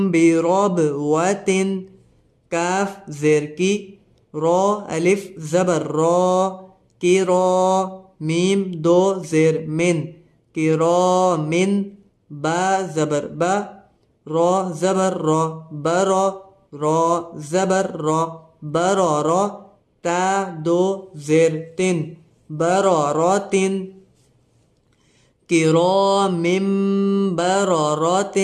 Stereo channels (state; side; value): identical; both; correlation 1.00